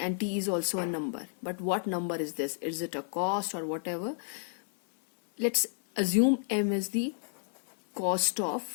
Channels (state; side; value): silent; right; digital silence